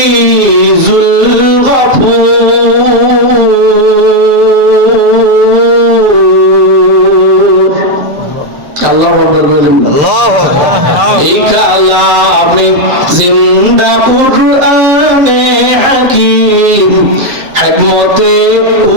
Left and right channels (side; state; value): left; late; 7.7 ms